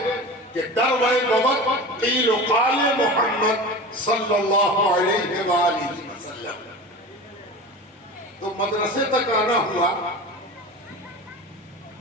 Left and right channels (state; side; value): normal; both; correlation 0.32